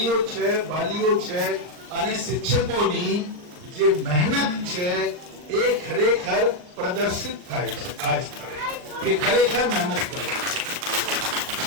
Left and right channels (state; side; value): late; left; 39 ms